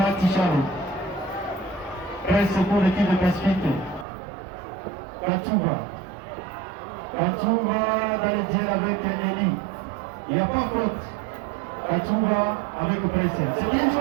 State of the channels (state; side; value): drops out; left; at 4.0 s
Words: Presse pour l'équipe de Pacifique. Kachouva dans le duel avec Eli. Il n'y a pas faute. Kachouva avec Presse. C'est bien